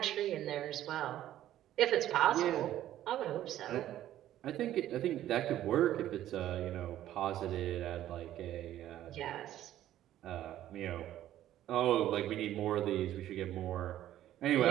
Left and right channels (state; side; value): quieter; left; 12.7 dB